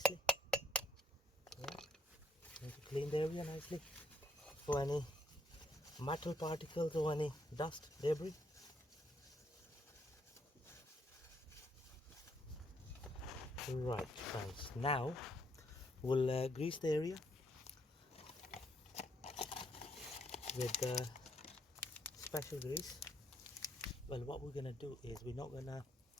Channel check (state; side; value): normal; both; correlation 0.72